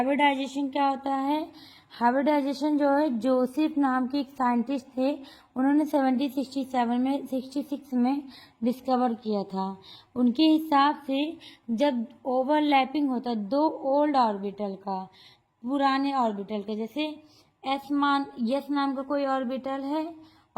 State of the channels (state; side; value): identical; both; correlation 1.00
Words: क्या होता है? हाइब्रिडाइजेशन जो है, जोसेफ नाम के एक साइंटिस्ट थे, उन्होंने 1767 में डिस्कवर किया था। उनके हिसाब से जब ओवरलैपिंग होता है दो ओल्ड ऑर्बिटल का, पुराने ऑर्बिटल का, जैसे एस नाम का कोई ऑर्बिटल है